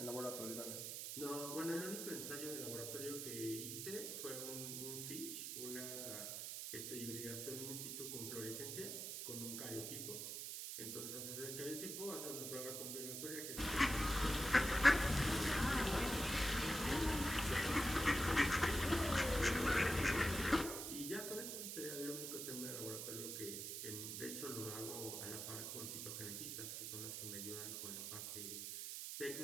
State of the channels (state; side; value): noise; right; hiss, 5 dB below the sound